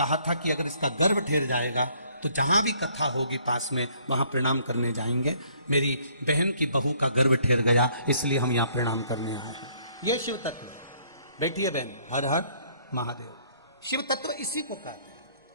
था कि अगर इसका गर्भ ठहर जाएगा तो जहां भी कथा होगी पास में वहां प्रणाम करने जाएंगे। मेरी बहन की बहू का गर्भ ठहर गया, इसलिए हम यहां प्रणाम करने आए हैं। ये शिव तत्व। बैठिए बहन। हर हर महादेव। शिव तत्व इसी को कहते हैं।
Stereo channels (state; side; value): inverted; both; correlation -0.63